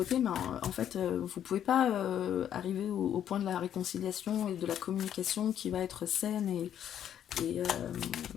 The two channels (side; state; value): right; quieter; 10.0 dB